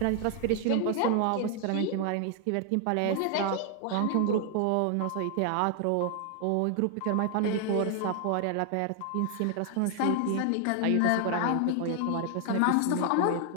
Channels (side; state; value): both; different; correlation 0.00